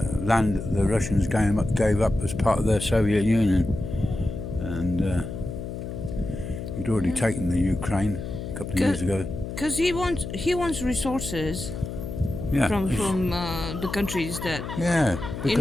land that the Russians gave up as part of their Soviet Union, and he'd already taken the Ukraine a couple of years ago. Because he wants resources. Yeah. From the countries that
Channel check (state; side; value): noise; left; hum, 7 dB below the sound